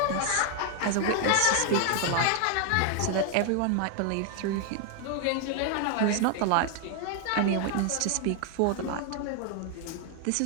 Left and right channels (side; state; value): both; different; correlation 0.00